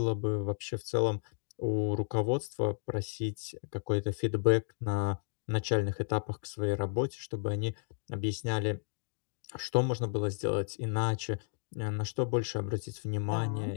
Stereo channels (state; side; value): silent; right; digital silence